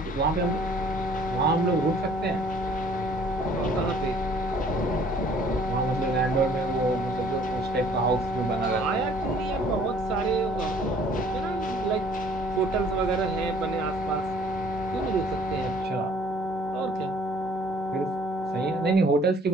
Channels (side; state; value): both; normal; correlation 0.56